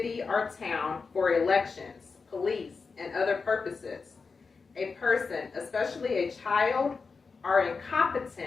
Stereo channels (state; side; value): quieter; right; 4.7 dB